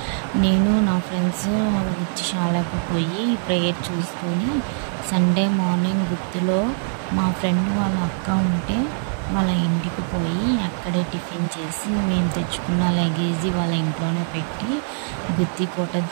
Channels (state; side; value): silent; left; 64 dB below the other